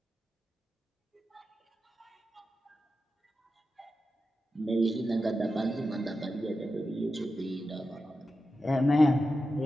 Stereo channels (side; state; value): both; normal; correlation 0.91